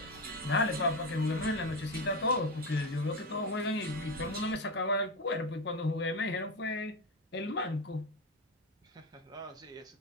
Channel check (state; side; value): normal; both; correlation 0.16